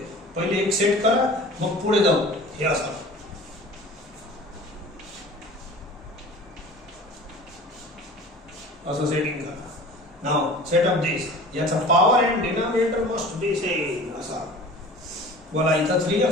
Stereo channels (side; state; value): both; normal; correlation 0.42